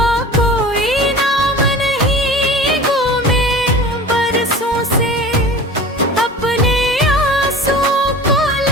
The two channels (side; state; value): both; normal; correlation 0.39